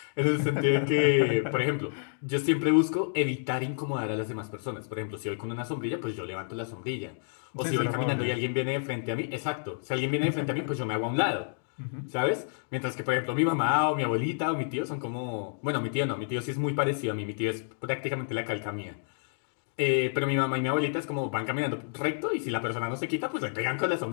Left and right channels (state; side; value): silent; right; digital silence